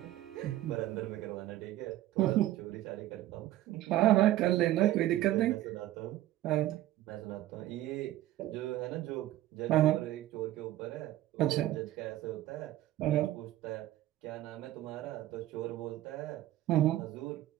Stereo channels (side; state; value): left; quieter; 14.5 dB